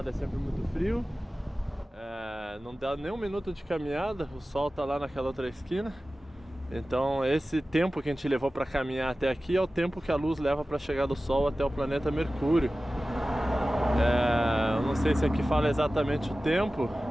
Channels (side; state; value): both; normal; correlation 0.96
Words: é sempre muito frio. Não dá nem um minuto de caminhada, o Sol tá lá naquela outra esquina. Então esse tempo que a gente levou para caminhar até aqui é o tempo que a luz leva para chegar do Sol até o planeta Mercúrio. Eu não sei se aqui fala exatamente o tempo.